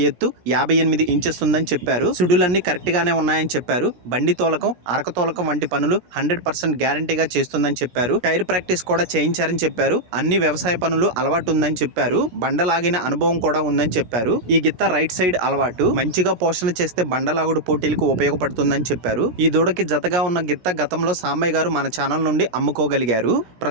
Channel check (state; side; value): late; left; 16 ms